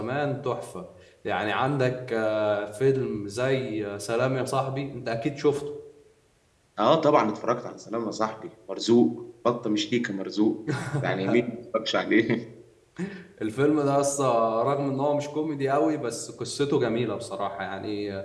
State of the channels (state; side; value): identical; both; correlation 1.00